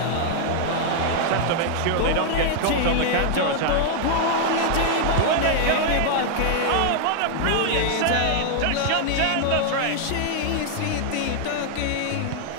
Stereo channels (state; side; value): different; both; correlation 0.00